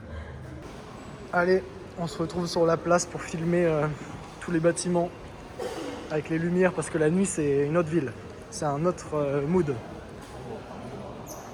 Allez, on se retrouve sur la place pour filmer tous les bâtiments avec les lumières parce que la nuit c'est une autre ville, c'est un autre mood.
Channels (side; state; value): both; identical; correlation 1.00